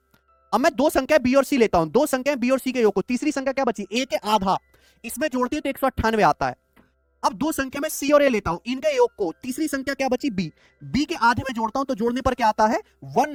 अब मैं दो संख्या बी और सी लेता हूं, दो संख्या बी और सी के योग को, तीसरी संख्या क्या बची ए के आधा, इसमें जोड़ते हैं तो 198 आता है। अब दो संख्या में सी और ए लेता हूं, इनके योग को, तीसरी संख्या क्या बची बी, बी के आधे में जोड़ता हूं तो जोड़ने पर क्या आता है,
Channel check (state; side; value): identical; both; correlation 1.00